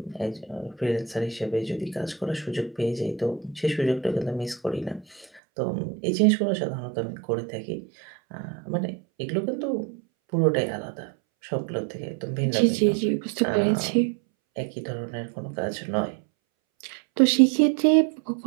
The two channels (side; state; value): left; drops out; at 5.4 s